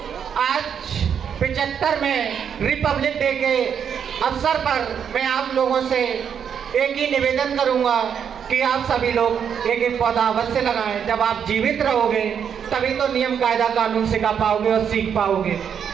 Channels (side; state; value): left; quieter; 7.8 dB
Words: आज 75 में रिपब्लिक डे के अवसर पर मैं आप लोगों से एक ही निवेदन करूंगा कि आप सभी लोग एक एक पौधा अवश्य लगाएं। जब आप जीवित रहोगे तभी तो नियम कायदा कानून सिखा पाओगे और सीख पाओगे।